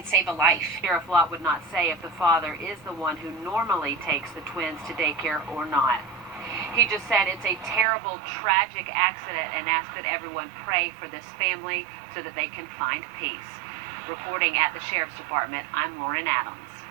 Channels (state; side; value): drops out; left; at 7.9 s